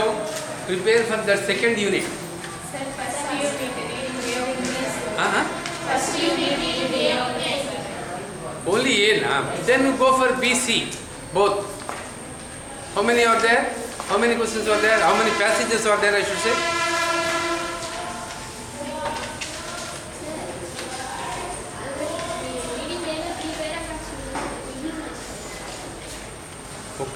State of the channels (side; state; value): both; identical; correlation 1.00